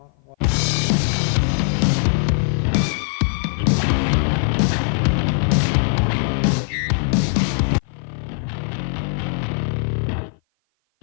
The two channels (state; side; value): silent; right; 56 dB below the other